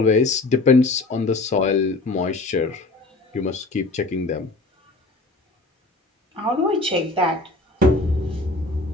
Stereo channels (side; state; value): right; quieter; 3.1 dB